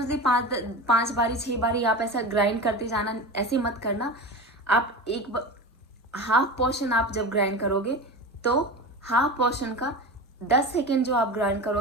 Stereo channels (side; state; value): both; normal; correlation 0.28